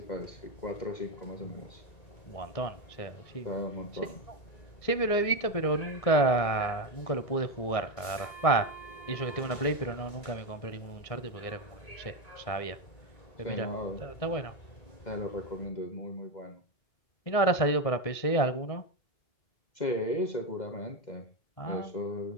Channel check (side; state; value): right; late; 1.6 ms